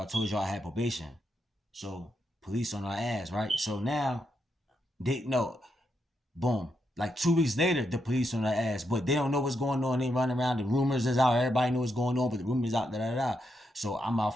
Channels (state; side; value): normal; both; correlation 0.82